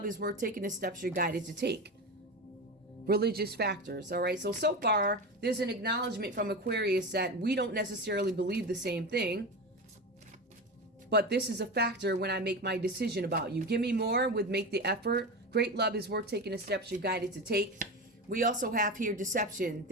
is worth taking the steps you're guided to take. Religious factors. All right. So far, there's an acknowledgement from Aquarius that we don't necessarily believe the same thing. But this is a factor when I make my decision about you. Give me more with make the effort. Great love is worth taking the steps you're guided to take. We also have here deception.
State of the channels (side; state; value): both; normal; correlation 0.23